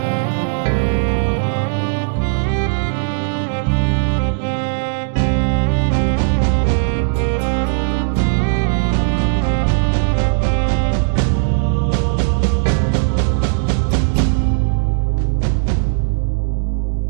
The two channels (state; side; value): silent; left; 62 dB below the other